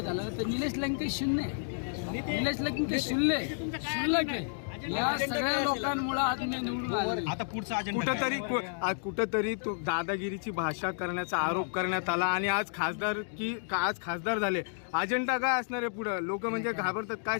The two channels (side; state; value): right; silent; digital silence